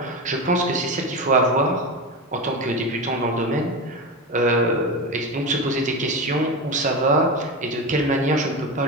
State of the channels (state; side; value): normal; both; correlation 0.20